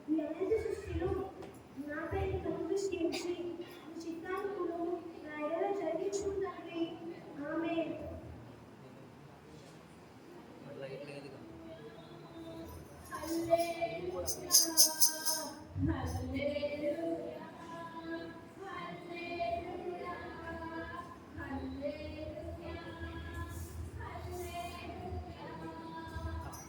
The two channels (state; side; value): identical; both; correlation 1.00